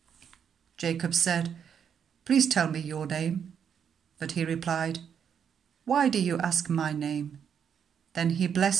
Jacob said, "Please tell me your name." But he replied, "Why do you ask my name?" Then he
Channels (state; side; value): quieter; left; 7.8 dB